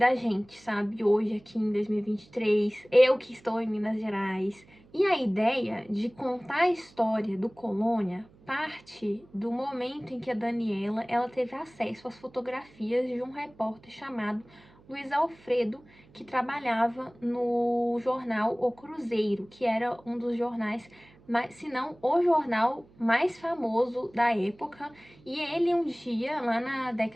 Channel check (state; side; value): noise; right; hum, 27 dB below the sound